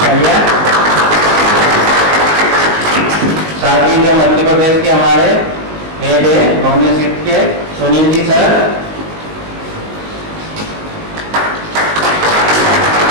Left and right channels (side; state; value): left; late; 19 ms